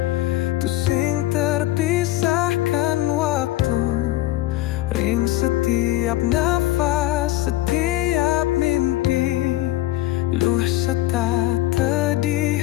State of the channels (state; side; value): quieter; right; 16.0 dB